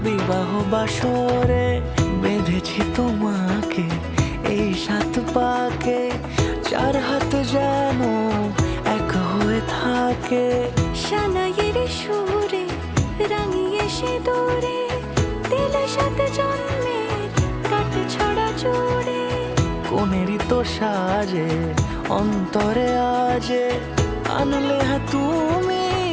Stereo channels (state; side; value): identical; both; correlation 1.00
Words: বিবাহ বাসরে। বেঁধেছি তোমাকে এই 7 পাকে, 4 হাত যেন এক হয়ে থাকে। সানাইয়ের সুরে রাঙিয়ে সে দূরে, দিলে 7 জন্মের কাট ছড়া জোড়ে। কোনেরই তো সাজে অন্তরে আজে, আনলে হ্যাঁ তুমি